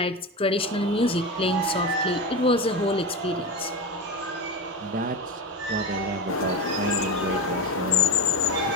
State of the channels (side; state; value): both; normal; correlation 0.19